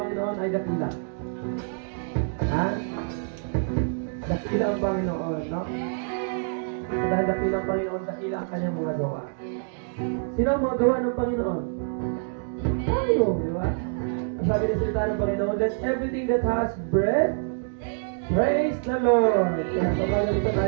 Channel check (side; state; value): left; silent; digital silence